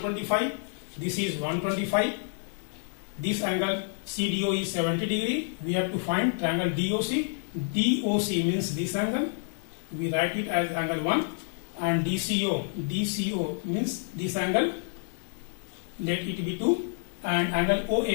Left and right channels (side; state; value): right; silent; digital silence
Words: this is 125, this angle CDO is 70 degree, we have to find triangle DOC, DOC means this angle, we write it as angle 1, and DCO means this angle, let it be 2, and angle